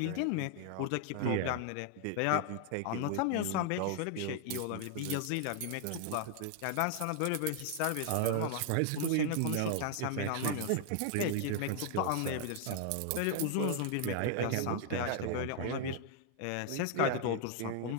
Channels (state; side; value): different; both; correlation 0.00